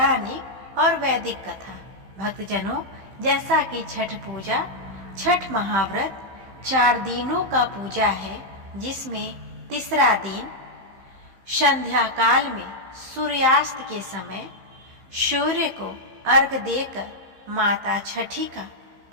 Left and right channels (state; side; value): late; left; 15 ms